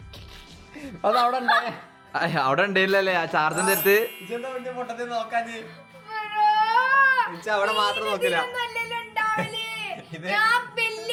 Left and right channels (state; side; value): identical; both; correlation 1.00